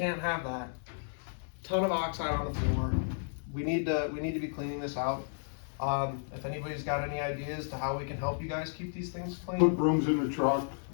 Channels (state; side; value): silent; right; 56 dB below the other